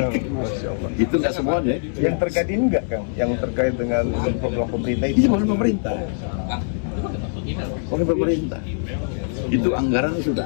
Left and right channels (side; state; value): right; silent; digital silence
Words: Itu nggak semuanya. Yang terkait ini enggak, Kang? Yang terkait dengan program pemerintah itu? Ini bukan pemerintah. Oleh pemerintah. Itu anggaran sudah